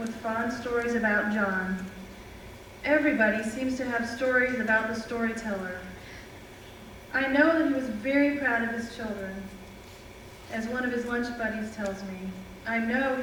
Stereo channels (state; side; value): identical; both; correlation 1.00